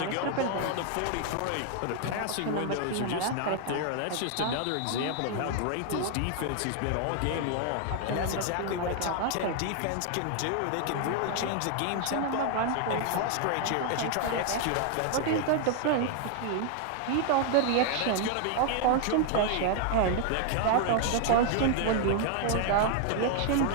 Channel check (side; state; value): both; different; correlation 0.00